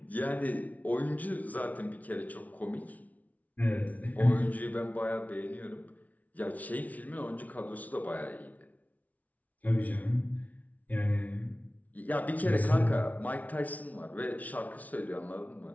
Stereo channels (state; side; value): late; right; 0.072 ms